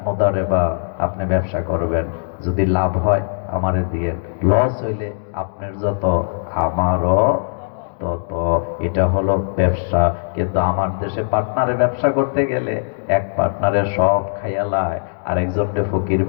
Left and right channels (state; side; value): silent; right; digital silence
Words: মুদারাবা, আপনি ব্যবসা করবেন, যদি লাভ হয় আমারে দিয়ে, লস হইলে আপনার যত আমারও তত। এটা হলো ব্যবসা। কিন্তু আমার দেশে পার্টনারে ব্যবসা করতে গেলে এক পার্টনারে সব খাইয়ালায়, আরেকজনকে ফকির